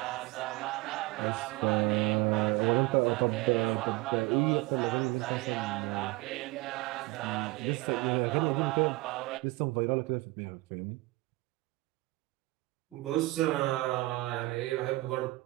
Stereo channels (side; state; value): left; quieter; 21.4 dB